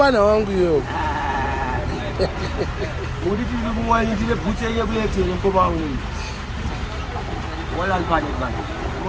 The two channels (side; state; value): both; identical; correlation 1.00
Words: wangu iyo. Uri tiri kumwani ndire bhutse yekulethe mukoma wangu. Wala mpane man.